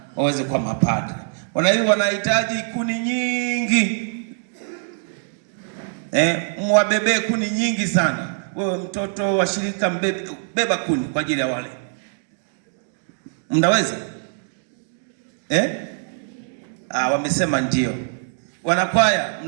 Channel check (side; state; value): left; silent; digital silence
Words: waweze kuwa mapadre. Wanahitaji kuni nyingi. Mwabebe kuni nyingi sana. Wewe mtoto wa shirika beba kuni kwa ajili ya wale. Mnaweza? Wamesema ndio. Wanakwaya,